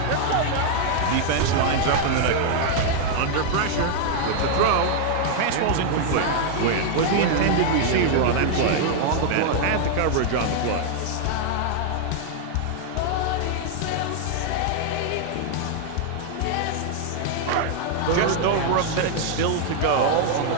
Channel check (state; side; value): different; both; correlation 0.00